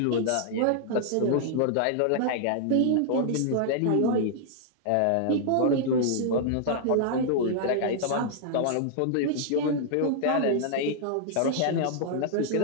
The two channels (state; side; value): different; both; correlation -0.01